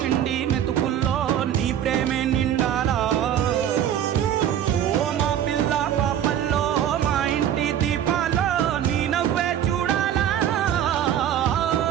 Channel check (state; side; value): quieter; left; 10.2 dB